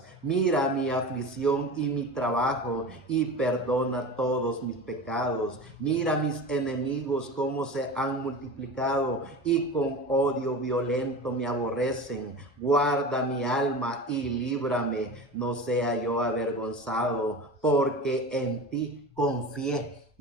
Mira mi aflicción y mi trabajo, y perdona todos mis pecados. Mira mis enemigos cómo se han multiplicado, y con odio violento me aborrecen. Guarda mi alma y líbrame, no sea yo avergonzado, porque en ti confié.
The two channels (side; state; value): both; normal; correlation 0.31